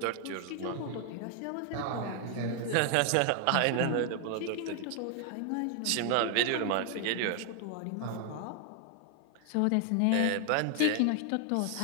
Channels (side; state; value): both; different; correlation 0.00